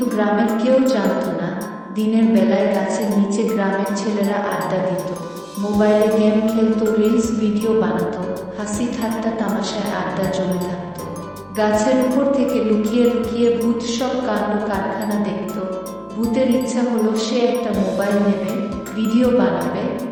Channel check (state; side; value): identical; both; correlation 1.00